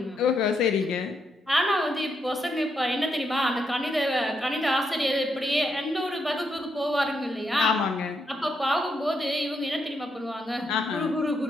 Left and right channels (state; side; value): normal; both; correlation 0.80